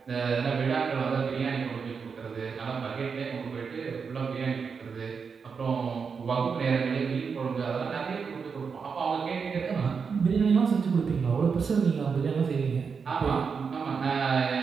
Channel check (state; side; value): quieter; left; 5.7 dB